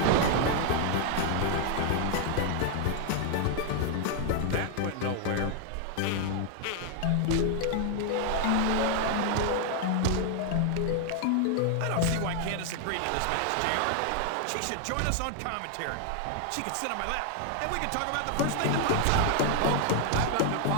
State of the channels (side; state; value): both; different; correlation 0.00